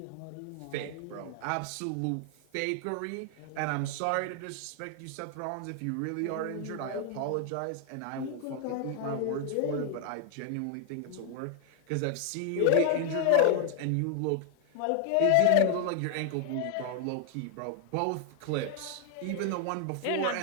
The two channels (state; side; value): different; both; correlation 0.00